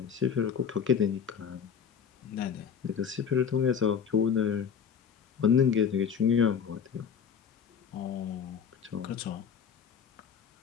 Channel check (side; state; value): right; quieter; 7.2 dB